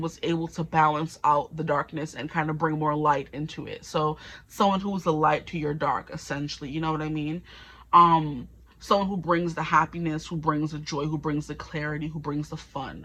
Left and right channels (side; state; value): both; identical; correlation 1.00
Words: was able to balance out the darkness and kind of bring more light into it. So someone who's a light to your dark, essentially, you know what I mean? Someone who brings the happiness, who brings the joy, who brings the clarity, who brings the fun,